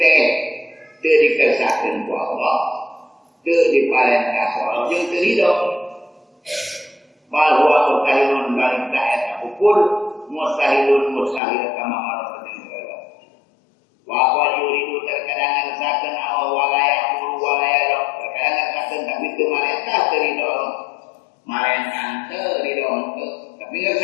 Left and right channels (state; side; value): drops out; right; at 11.4 s